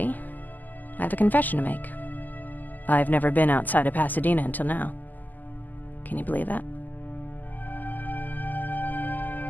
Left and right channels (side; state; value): right; late; 0.084 ms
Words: I have a confession to make. I've never been outside of Pasadena until now. Can you believe that?